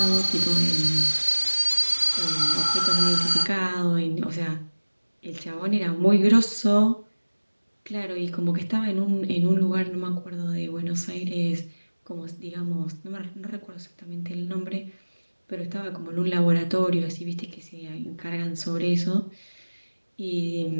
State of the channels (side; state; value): both; inverted; correlation -1.00